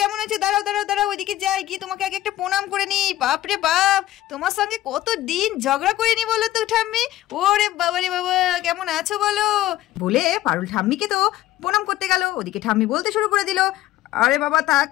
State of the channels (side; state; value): right; quieter; 14.7 dB